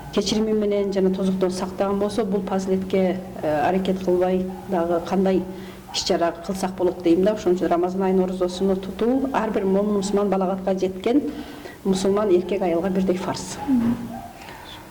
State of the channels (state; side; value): identical; both; correlation 1.00